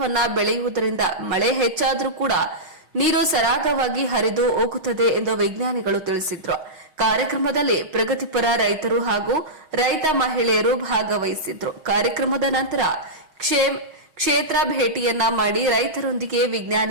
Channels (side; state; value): left; late; 6.4 ms